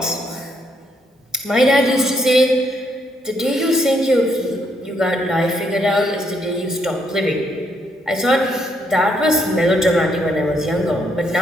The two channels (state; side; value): normal; both; correlation 0.74